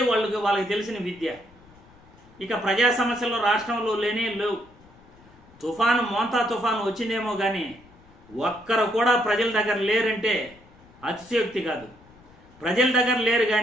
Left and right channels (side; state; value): left; noise; rumble, 26 dB below the sound